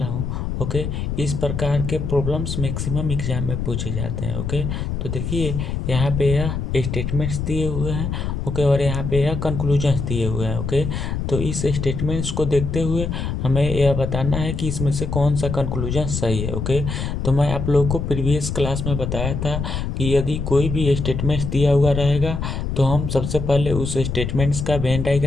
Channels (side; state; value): left; noise; rumble, 3 dB below the sound